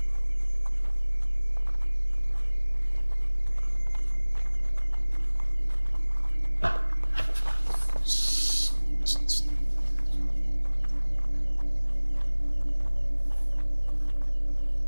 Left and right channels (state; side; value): inverted; both; correlation -1.00